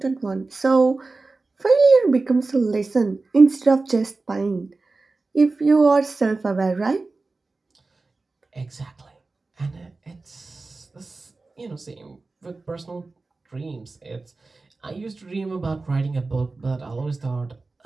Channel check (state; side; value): quieter; left; 3.6 dB